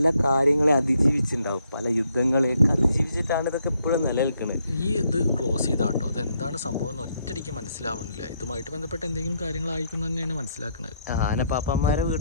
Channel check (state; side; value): inverted; both; correlation -0.74